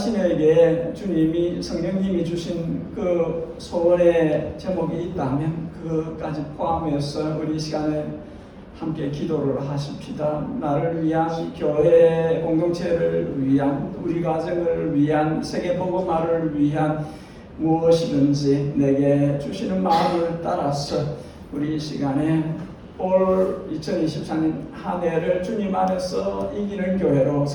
주님이 성령님이 주신 그 소원의 제목이 있다면 그것까지 포함해서 우리 시간에 함께 기도를 하십시다. 나를 위한, 교회 공동체를 위한, 우리 가정을 위한, 세계복음화를 위한 무엇이든지 내게 주시는 마음을 따라서 우리 시간에 올 2024년 한 해를 주님 안에서 이기는 교회로,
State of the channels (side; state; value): both; identical; correlation 1.00